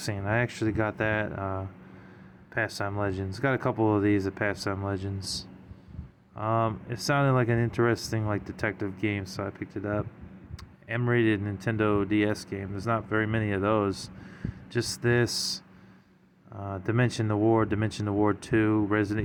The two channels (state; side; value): identical; both; correlation 1.00